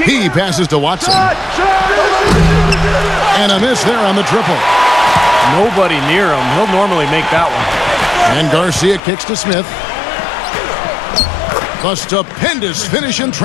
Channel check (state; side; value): drops out; right; at 9.0 s